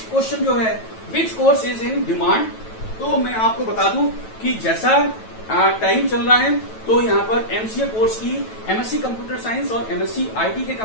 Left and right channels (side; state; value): right; late; 9.1 ms